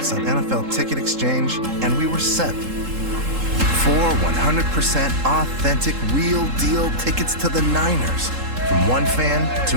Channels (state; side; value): late; left; 3.7 ms